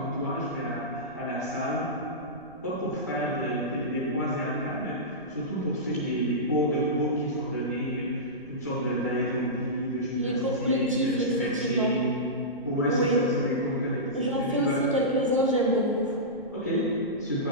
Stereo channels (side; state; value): right; noise; rumble, 27 dB below the sound